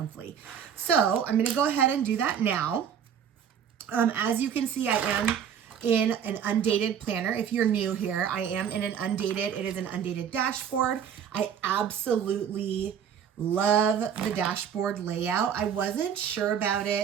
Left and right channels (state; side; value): quieter; left; 8.3 dB